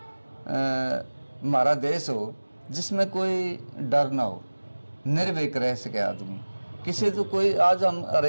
हमारा देश हो जिसमें कोई डर ना हो, निर्भीक रह सके आदमी। किसी तो कोई आज हम हर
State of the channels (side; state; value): both; inverted; correlation -1.00